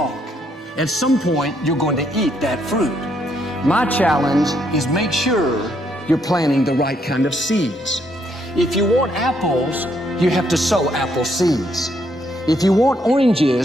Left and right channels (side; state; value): both; normal; correlation 0.73